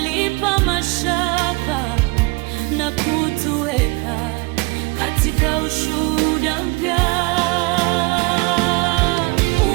mashaka na kutuweka katika ushuhuda mpya.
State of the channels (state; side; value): quieter; left; 26.8 dB